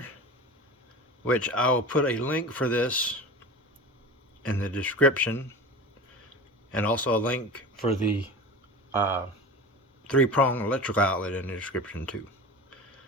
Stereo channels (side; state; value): both; normal; correlation 0.32